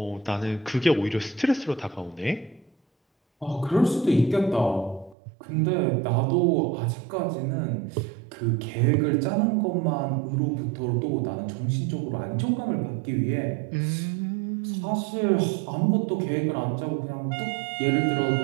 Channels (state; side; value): drops out; left; at 5.2 s